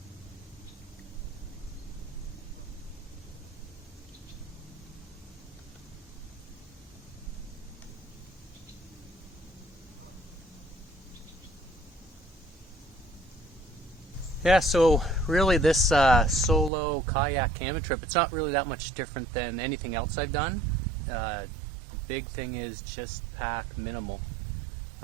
Yeah, so really this solo kayak camping trip, it's not really that much different than anything else I've done. The big thing is just pack minimal.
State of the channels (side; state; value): left; drops out; at 16.7 s